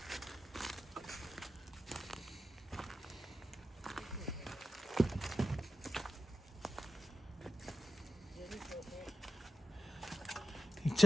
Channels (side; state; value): both; normal; correlation 0.91